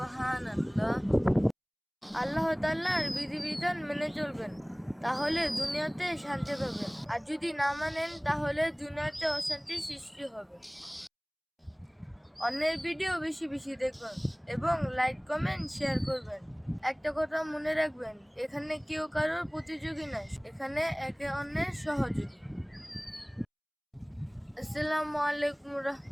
আল্লাহ তাআলার বিধিবিধান মেনে চলবেন, তাহলে দুনিয়াতে শান্তি পাবেন, আর যদি না মানেন তাহলে দুনিয়াতে অশান্তি সৃষ্টি হবে। অন্যের ভিডিও বেশি বেশি দেখবেন এবং লাইক কমেন্ট শেয়ার করবেন। একটা কথা মনে রাখবেন, এখানে কেউ কারোর প্রতিযোগী নয়, এখানে একে অন্যের সহযোগী। আসসালামু আলাইকুম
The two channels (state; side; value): identical; both; correlation 1.00